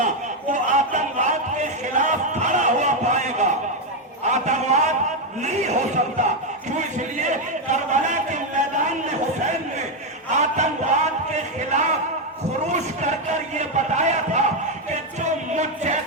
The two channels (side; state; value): both; normal; correlation 0.05